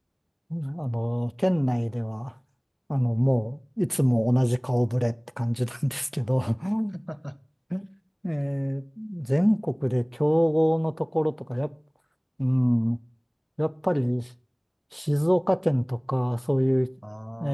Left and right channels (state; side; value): identical; both; correlation 1.00